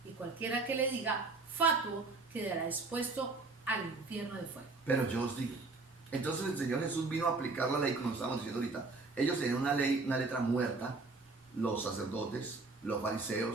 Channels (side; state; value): left; quieter; 3.7 dB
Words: y cualquiera que le diga fatuo quedará expuesto al infierno de fuego. Pero yo os digo. Entonces el Señor Jesús vino a aplicar la ley, como estábamos diciendo ahorita. Ellos tenían una ley, una letra muerta, los sacerdotes, los